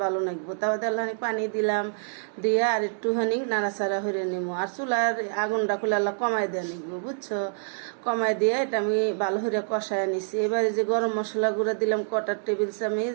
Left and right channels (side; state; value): left; silent; digital silence